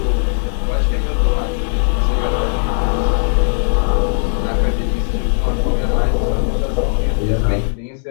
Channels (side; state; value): right; silent; digital silence